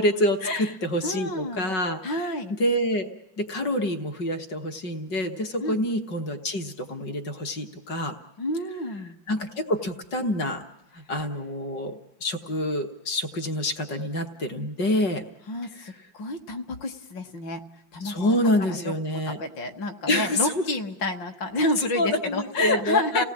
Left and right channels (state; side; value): late; right; 5.3 ms